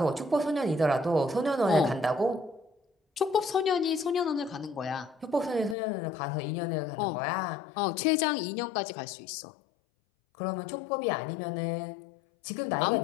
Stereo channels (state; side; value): drops out; right; at 5.8 s